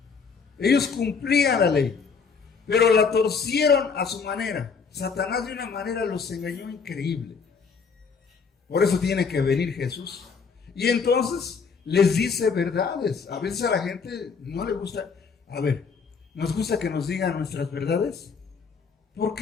Ellos cumplían la ley. Pero la torcieron a su manera. Satanás de una manera los engañó increíble. Por eso tiene que venir Jesús. Y entonces les dice verdades. A veces a la gente no le gusta. A ver, ¿nos gusta que nos digan nuestras verdades? ¿Por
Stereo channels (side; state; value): right; quieter; 5.5 dB